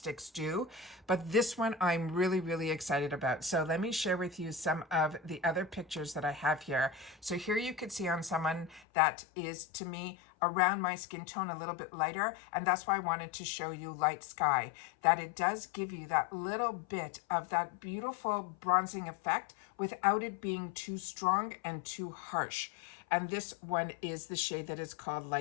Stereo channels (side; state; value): right; drops out; at 8.8 s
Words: do. But this one I'm really excited about. So let me share with you some of the other pictures that I have here. So here you could see on someone that is, to me, around my skin tone, a little bit lighter, and that's why I wanted to show you Light Sky, that it does give you that little bit of that beautiful bronzing effect without it being too strong and too harsh. and this one is the shade that is called